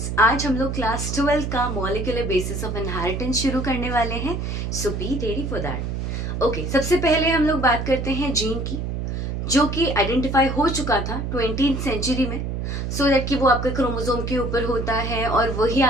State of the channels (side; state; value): right; noise; hum, 3 dB below the sound